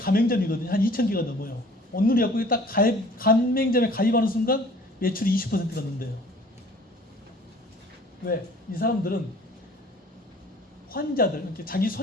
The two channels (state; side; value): normal; both; correlation 0.51